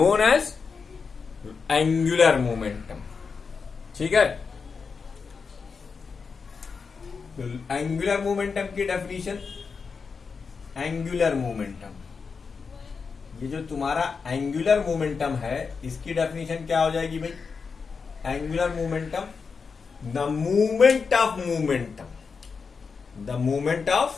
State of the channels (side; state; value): right; quieter; 5.3 dB